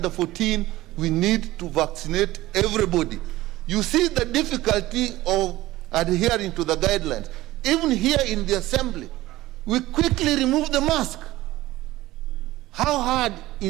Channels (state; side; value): quieter; left; 17.0 dB